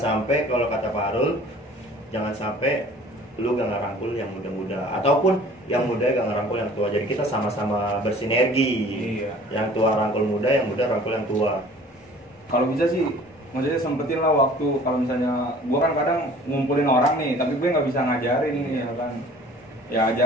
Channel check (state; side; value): normal; both; correlation 0.49